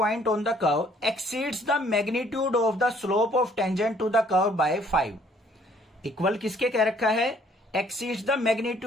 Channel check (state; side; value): normal; both; correlation 0.61